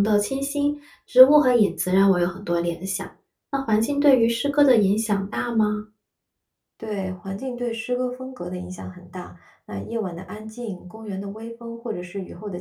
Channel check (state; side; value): identical; both; correlation 1.00